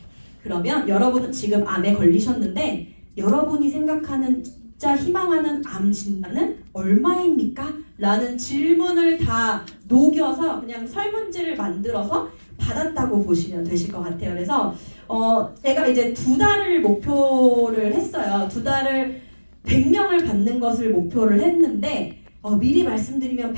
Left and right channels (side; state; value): both; inverted; correlation -1.00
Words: 그러면 여러분은 지금 암에 걸리셨는데 여러분이 생각하는 진짜 희망하는 암 진단은 얼마입니까? 라는 질문을 다 녹여서 그냥 설문지를 만들어서 받았다고 보시면 되실 것 같아요. 그래서 제가 이제 2달을 목표를 했어요. 2달을 100명을 받는 것을 목표를 했는데 미리 말씀드리면